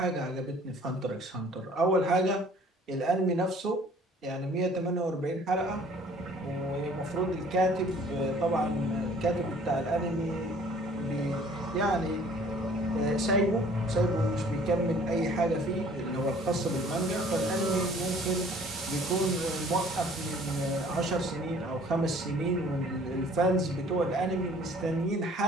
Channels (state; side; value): normal; both; correlation 0.54